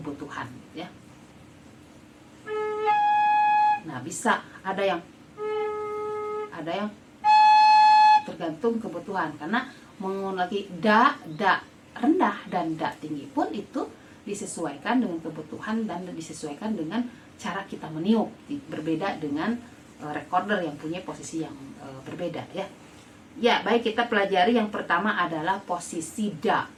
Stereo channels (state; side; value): identical; both; correlation 1.00